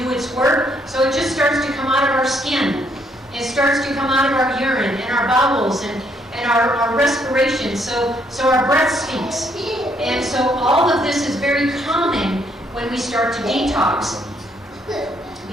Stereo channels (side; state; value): both; normal; correlation 0.70